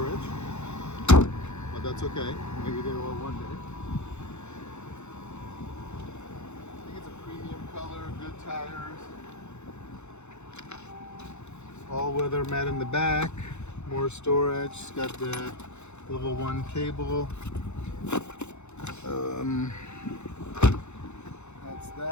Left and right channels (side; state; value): right; late; 0.82 ms